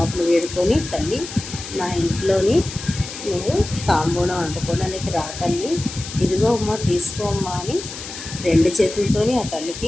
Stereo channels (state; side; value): noise; left; hiss, 11 dB below the sound